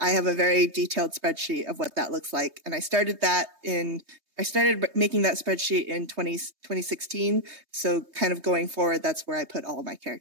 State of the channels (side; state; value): left; late; 3.2 ms